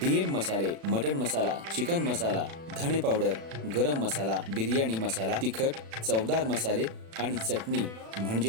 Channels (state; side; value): late; left; 36 ms